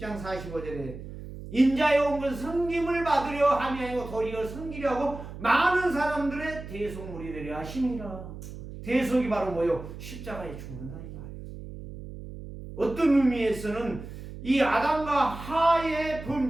45절에 인자에 온 것은 섬김을 받으려 함이 아니고 도리어 섬기려 하고 많은 사람들의 대속물이 되려 하심이라. 대속이 바로 뭐요? 십자가에 죽는다니까. 어떤 의미에서는 이 아담과 하의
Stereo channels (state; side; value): noise; right; hum, 12 dB below the sound